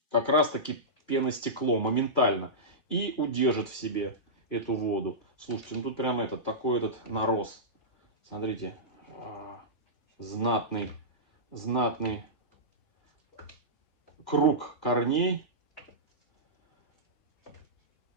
как раз таки пеностекло моментально. И удержит в себе эту воду. Слушайте, тут прям такой нарост. Смотрите. Знатный круг корней.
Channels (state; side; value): late; right; 3.5 ms